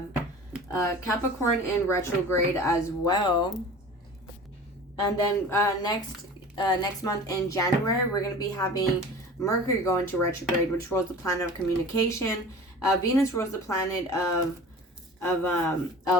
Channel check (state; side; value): normal; both; correlation 0.39